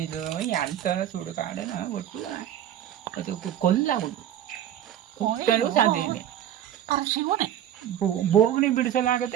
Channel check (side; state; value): left; quieter; 11.0 dB